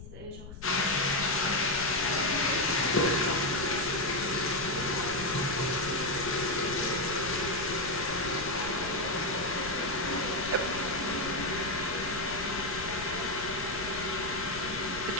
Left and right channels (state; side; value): noise; left; rumble, 13 dB below the sound